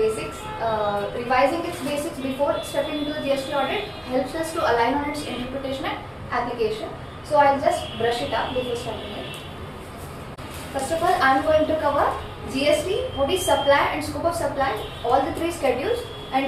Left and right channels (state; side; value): identical; both; correlation 1.00